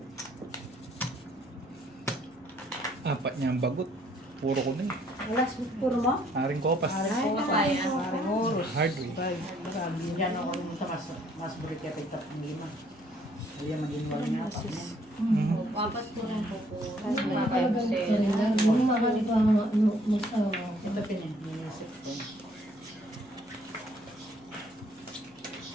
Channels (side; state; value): left; noise; hum, 28 dB below the sound